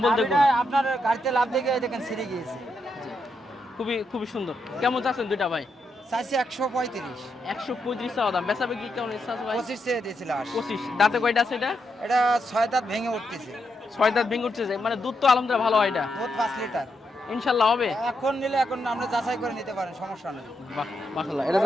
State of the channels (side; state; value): both; normal; correlation 0.82